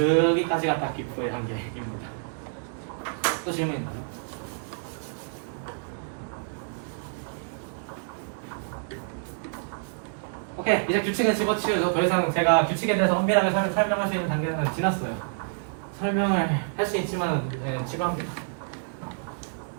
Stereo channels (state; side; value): silent; left; digital silence